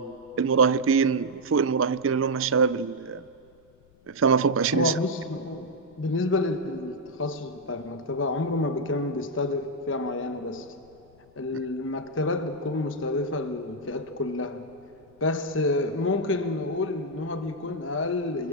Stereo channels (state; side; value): noise; left; rumble, 29 dB below the sound